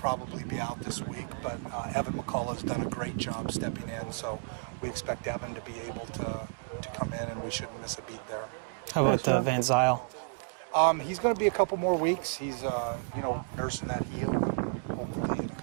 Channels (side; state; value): left; silent; digital silence